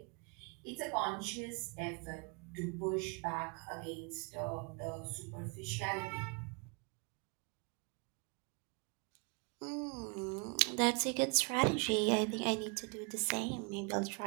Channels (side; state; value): left; quieter; 33.3 dB